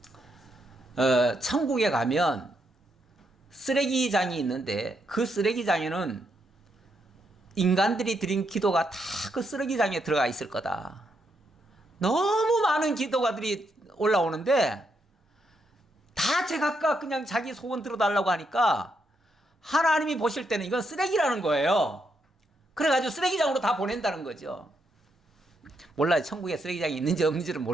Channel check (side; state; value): both; normal; correlation 0.79